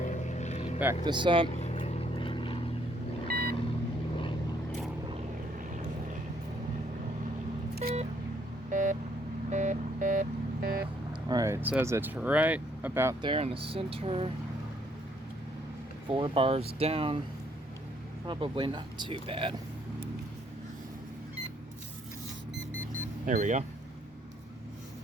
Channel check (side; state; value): both; normal; correlation 0.68